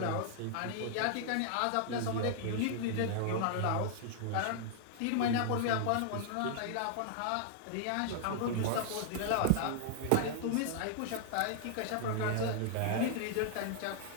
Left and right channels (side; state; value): both; different; correlation -0.01